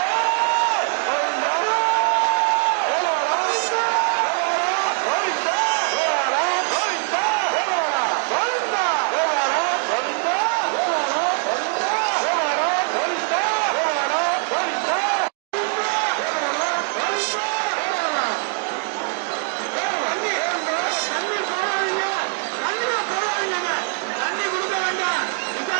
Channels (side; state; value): left; quieter; 38.7 dB